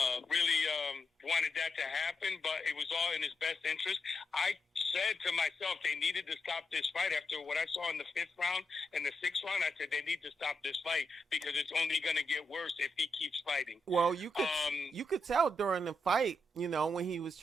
really wanted that to happen, but it was all in his best interest. I said to myself, they needed to stop this fight after what I saw in the 5th round and the 6th round. I said they need to stop this fight because it's only going to get worse if he keeps fighting. Well, you could tell during the fight, when he was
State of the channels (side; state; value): both; normal; correlation 0.84